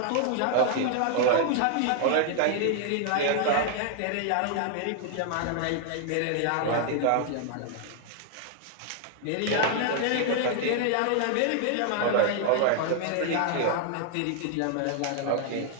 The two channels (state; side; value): different; both; correlation 0.00